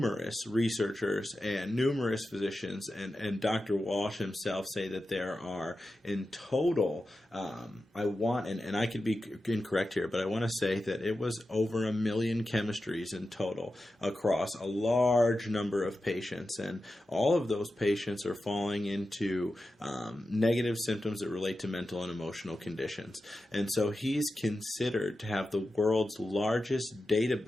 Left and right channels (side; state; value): both; normal; correlation 0.92